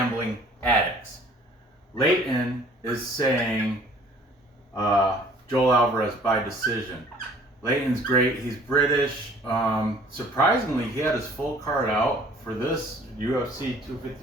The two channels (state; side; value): normal; both; correlation 0.54